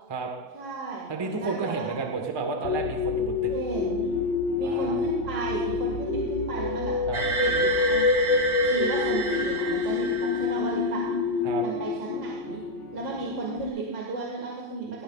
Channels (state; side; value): normal; both; correlation 0.04